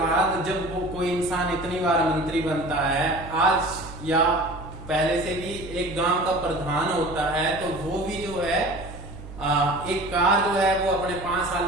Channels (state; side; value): noise; right; hum, 14 dB below the sound